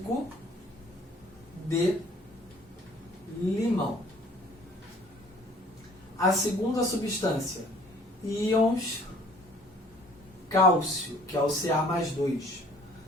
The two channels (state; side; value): normal; both; correlation 0.54